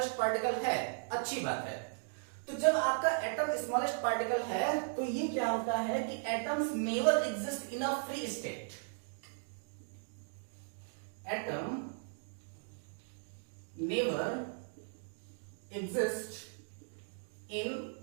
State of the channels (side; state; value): left; silent; digital silence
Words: पार्टिकल है, अच्छी बात है। तो जब आपका एटम स्मॉलेस्ट पार्टिकल है तो ये क्या होता है कि atoms never exist in a free state. Atom never exist in